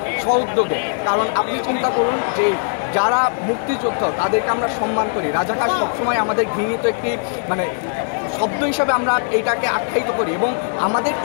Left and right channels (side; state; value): right; silent; digital silence